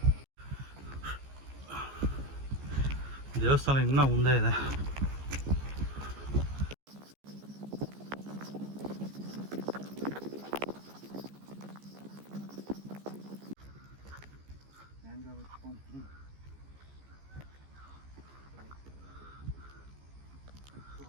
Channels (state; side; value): late; left; 15 ms